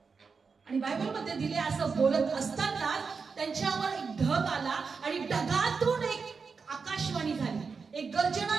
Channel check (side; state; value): left; quieter; 5.1 dB